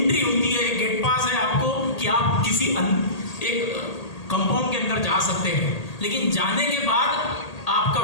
होती है, एक गेट पास है आपको कि आप किसी एक कंपाउंड के अंदर जा सकते हैं, लेकिन जाने के बाद आपका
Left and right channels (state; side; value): late; right; 1.8 ms